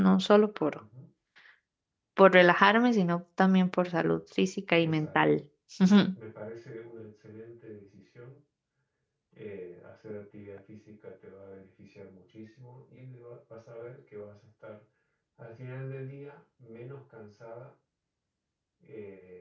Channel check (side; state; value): both; identical; correlation 1.00